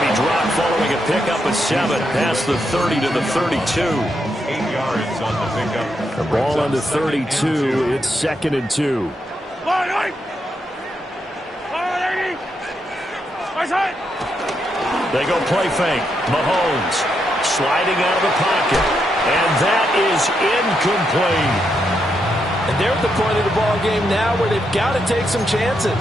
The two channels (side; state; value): both; normal; correlation 0.81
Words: to be dropped following a pickup of 7 past the 30 to the 32. 8 yards on the pickup. The ball on the 32. It's 2nd and 2. They go play fake. Mahomes sliding out of the pocket. And that is incomplete. And they're at the point of the ball game now where they've got to take some chances.